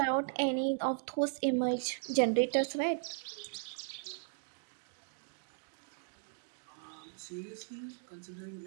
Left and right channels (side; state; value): left; silent; digital silence